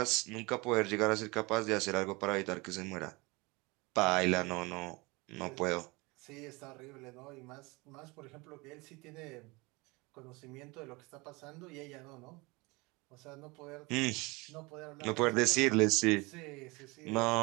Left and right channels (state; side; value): quieter; left; 25.1 dB